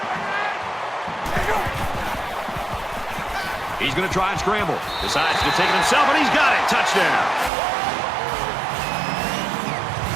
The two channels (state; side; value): drops out; left; at 7.5 s